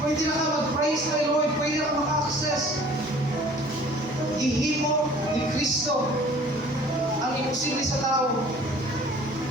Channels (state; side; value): normal; both; correlation 0.50